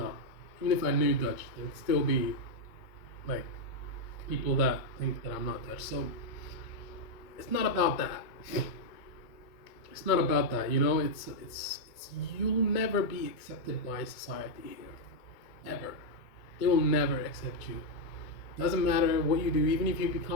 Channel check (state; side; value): late; right; 2.2 ms